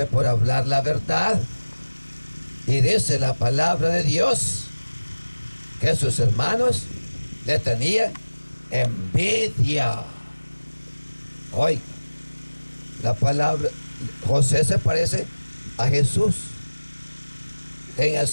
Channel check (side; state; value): both; inverted; correlation -1.00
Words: por hablar la verdad. Y dice la palabra de Dios que sus hermanos le tenían envidia. Oiga, la palabra, José se parece a Jesús en el